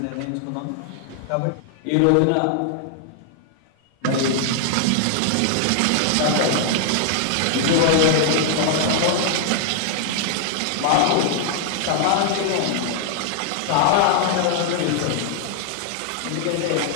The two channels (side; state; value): both; different; correlation 0.00